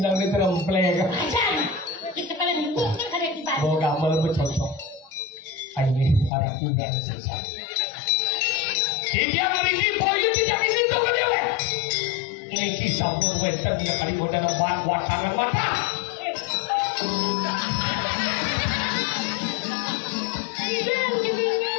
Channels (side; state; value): right; drops out; at 6.3 s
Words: di tremplek. Ajan, kita pada minggu kan ada di Bali. Oh, gak melebet cocok. Ini para tinggal selesai. Dia ngerti boyo tidak ini tuh kedewe. Ini kisah pun wenten yang kali bodan watangan mata.